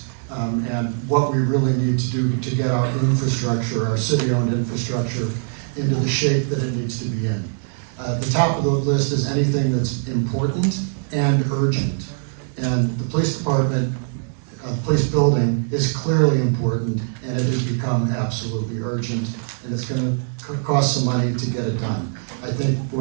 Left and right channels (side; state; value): left; silent; digital silence